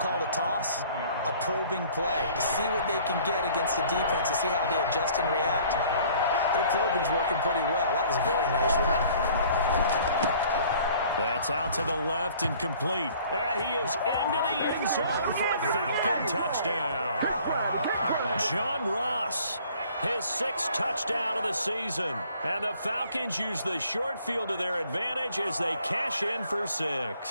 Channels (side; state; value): both; inverted; correlation -0.55